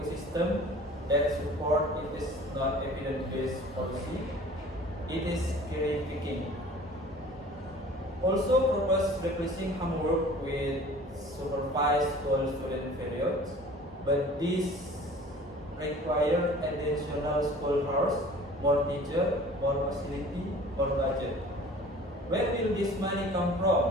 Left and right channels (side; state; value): both; normal; correlation 0.46